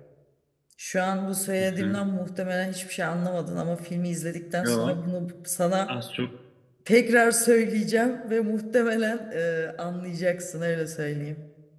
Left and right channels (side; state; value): both; identical; correlation 1.00